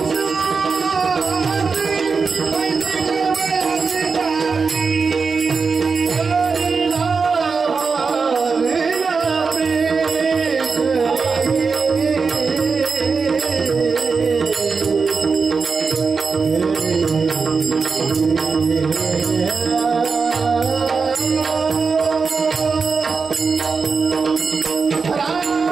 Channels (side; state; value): left; quieter; 4.9 dB